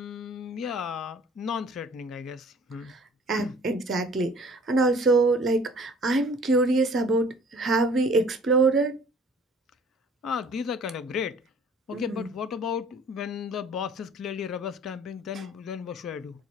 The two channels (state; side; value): normal; both; correlation 0.52